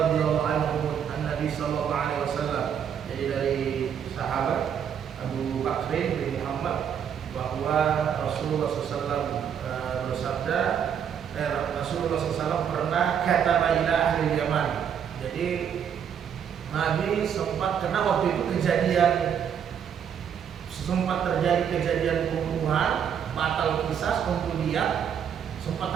anhu an Nabi sallallahu alaihi wasallam. Jadi dari sahabat Abu Bakr bin Muhammad bahwa Rasulullah SAW bersabda, Rasulullah SAW pernah kata ila ahli Yaman. Jadi Nabi sempat kena waktu itu sempat terjadi kejadian pembunuhan, batal kisah untuk dia, sempat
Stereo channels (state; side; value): quieter; left; 8.3 dB